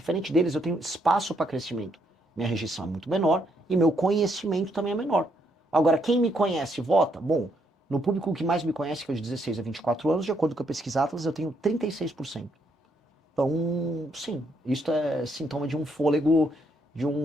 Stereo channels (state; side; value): normal; both; correlation 0.73